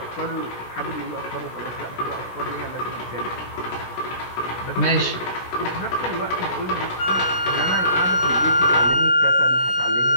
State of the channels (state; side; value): late; right; 16 ms